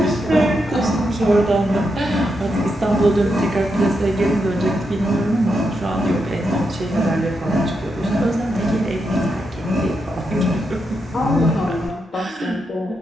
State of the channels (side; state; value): both; normal; correlation 0.83